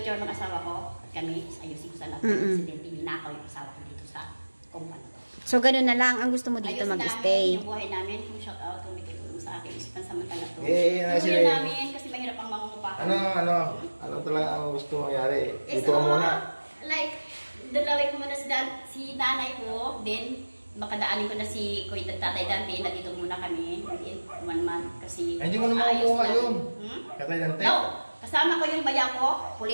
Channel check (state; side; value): inverted; both; correlation -1.00